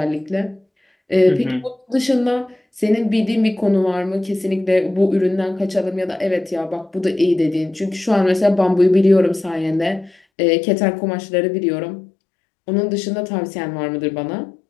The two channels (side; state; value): right; drops out; at 10.2 s